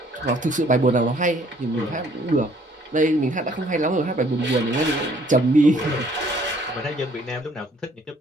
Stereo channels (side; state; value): both; normal; correlation 0.61